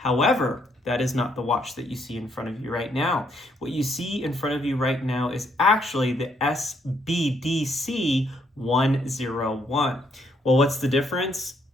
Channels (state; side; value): normal; both; correlation 0.71